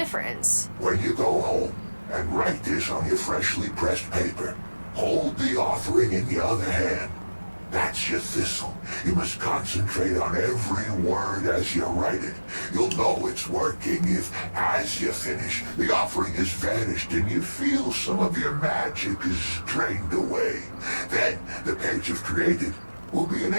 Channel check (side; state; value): both; inverted; correlation -1.00